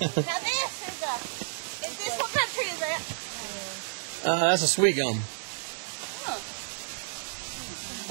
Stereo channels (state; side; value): silent; left; digital silence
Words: this what country is that? That's a sweet gum.